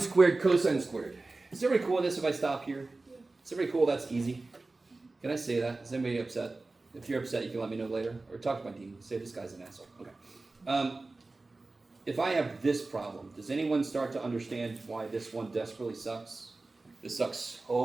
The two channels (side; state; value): left; quieter; 3.3 dB